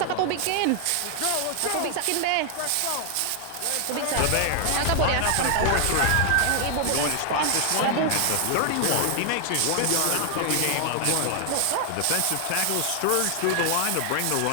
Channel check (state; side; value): different; both; correlation 0.00